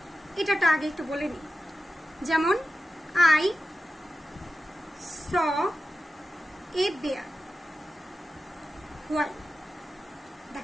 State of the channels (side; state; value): both; normal; correlation 0.91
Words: এটাটা আগে একটু বলে নিই। যেমন I saw a bear while,